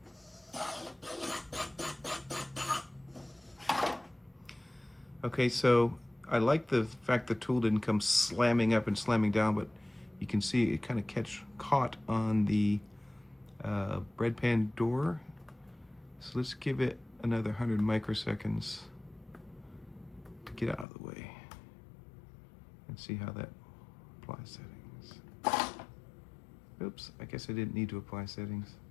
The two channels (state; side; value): drops out; right; at 20.9 s